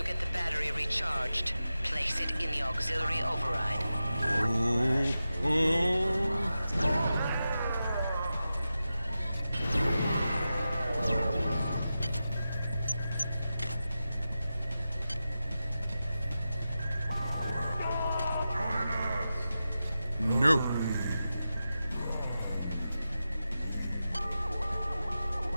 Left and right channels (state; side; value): inverted; both; correlation -0.92